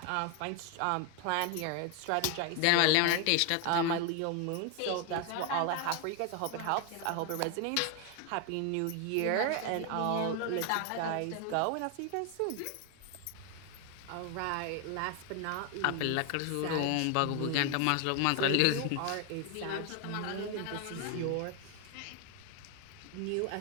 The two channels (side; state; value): both; different; correlation 0.01